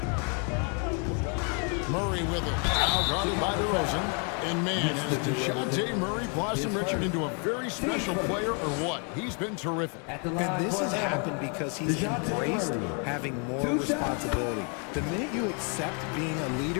Murray with it. Now guarded by DeRozan. And man, has DeJounte Murray blossomed Richard into a very special player or what? He's been terrific. And this has happened because he's embraced having more responsibility. The minute you accept being a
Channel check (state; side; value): quieter; right; 38.1 dB